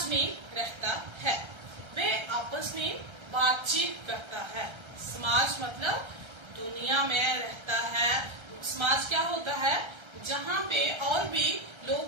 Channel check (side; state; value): left; late; 1.3 ms